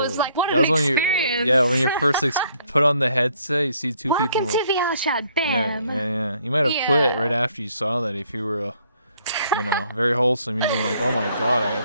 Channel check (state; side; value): inverted; both; correlation -0.66